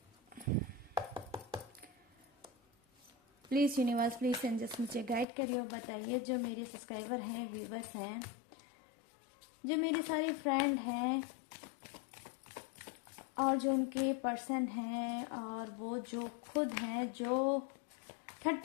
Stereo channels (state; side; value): drops out; right; at 5.2 s